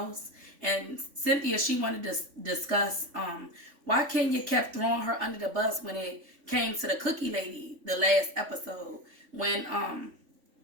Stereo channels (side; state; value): left; late; 3.5 ms